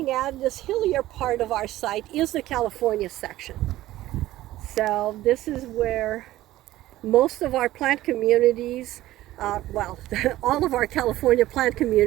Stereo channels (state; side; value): quieter; left; 15.5 dB